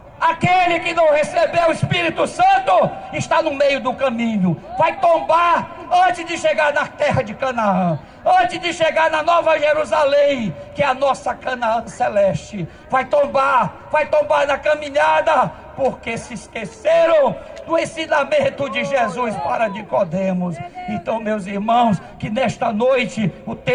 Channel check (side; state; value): both; identical; correlation 1.00